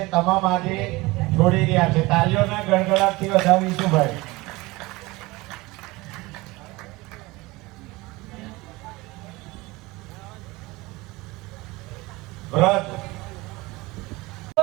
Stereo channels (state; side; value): quieter; left; 21.8 dB